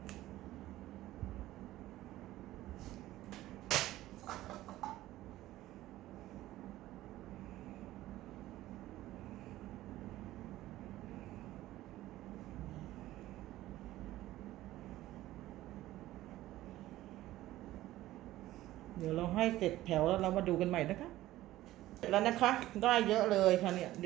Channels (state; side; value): quieter; left; 15.5 dB